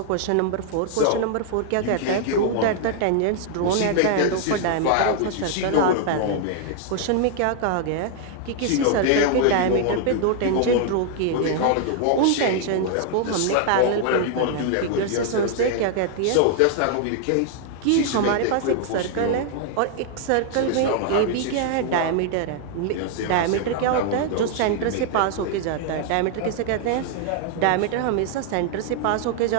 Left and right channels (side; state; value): both; different; correlation 0.00